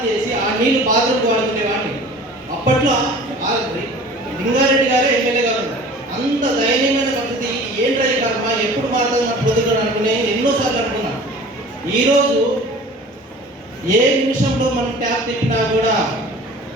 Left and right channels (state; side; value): normal; both; correlation 0.43